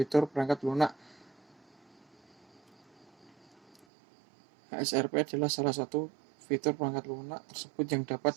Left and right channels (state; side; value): drops out; left; at 3.9 s